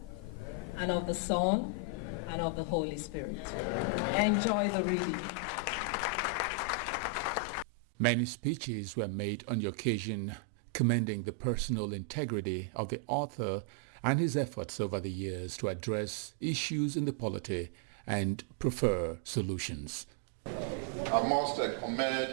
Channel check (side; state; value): left; drops out; at 7.7 s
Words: and of the Son and of the Holy Spirit. Enjoy the reading. Many speeches were made on the occasion commending the personal integrity of the author and his efforts over the years to address issues in the polity and prefer solutions. I must